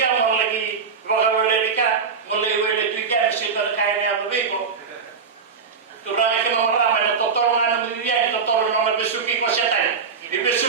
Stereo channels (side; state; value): left; quieter; 5.6 dB